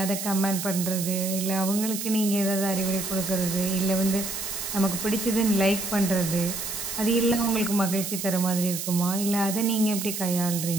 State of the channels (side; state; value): right; noise; hiss, 5 dB below the sound